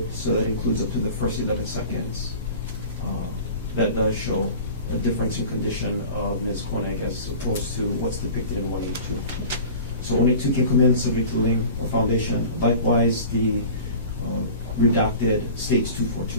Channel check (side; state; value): both; inverted; correlation -0.39